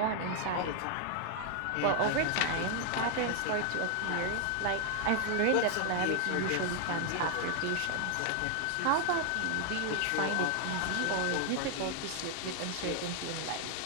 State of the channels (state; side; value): different; both; correlation 0.00